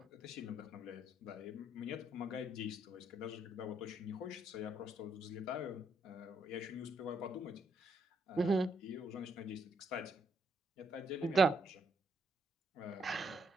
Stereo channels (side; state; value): both; normal; correlation 0.74